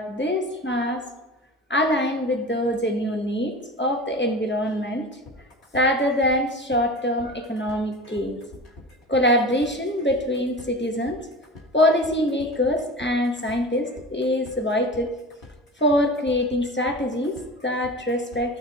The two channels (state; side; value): normal; both; correlation 0.33